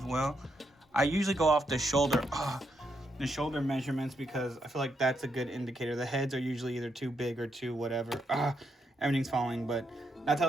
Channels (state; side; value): normal; both; correlation 0.80